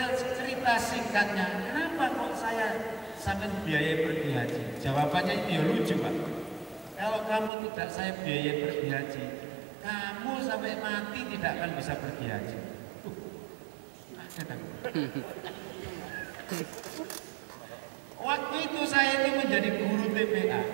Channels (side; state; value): left; drops out; at 7.5 s